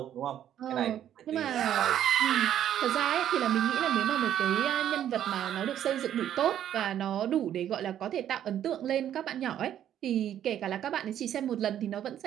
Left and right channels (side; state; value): left; quieter; 10.7 dB